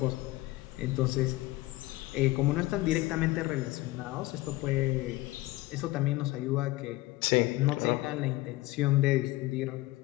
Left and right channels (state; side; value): quieter; right; 19.1 dB